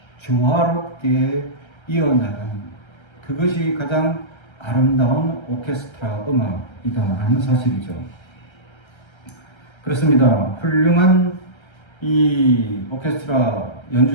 조화롭게 이어나가는 그것이 가장 아름다운 오케스트라 음악이다라는 사실이죠. 그렇습니다. 훌륭한 이 오케스트라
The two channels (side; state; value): right; late; 1.3 ms